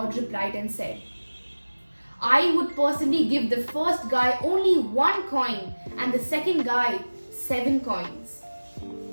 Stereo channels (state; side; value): inverted; both; correlation -1.00